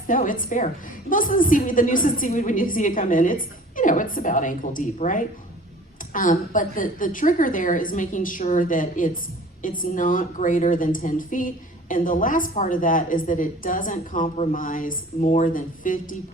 no, it's fair. Most of the seaweed, the nuisance seaweed, when you see it come in, it's, it's about ankle deep, right? But the trigger there is making sure that it's not greater than 10 feet. And the last part of that is that it doesn't compromise more than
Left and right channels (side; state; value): both; normal; correlation 0.46